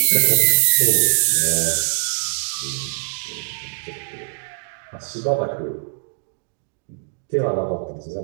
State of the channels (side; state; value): left; silent; digital silence